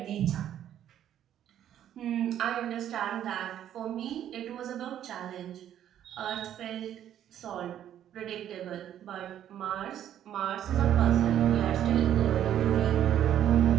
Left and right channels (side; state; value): left; quieter; 10.8 dB